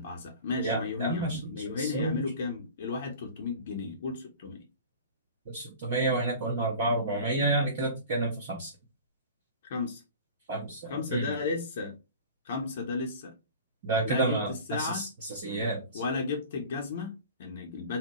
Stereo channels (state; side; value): inverted; both; correlation -0.39